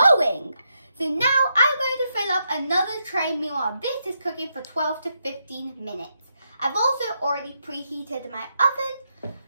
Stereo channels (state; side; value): inverted; both; correlation -0.82